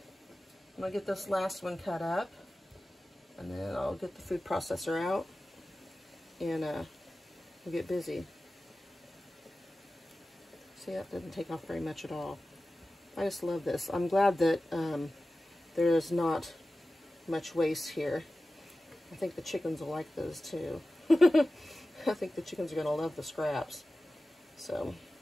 going to get this last one cut up, and then I'll get the food processor out, and we'll get busy. See, that didn't take off very much at all. I just love this. I'm glad that there is not much waste here. I think the chickens will like those too. I think the chickens are going to love the scraps. So,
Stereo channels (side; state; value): both; normal; correlation 0.95